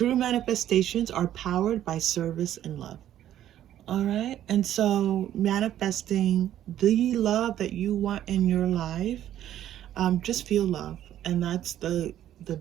manifestations are powered by service and love. All right, and so manifesting the love that you want in your life, just feel love, and that's the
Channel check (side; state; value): left; quieter; 11.7 dB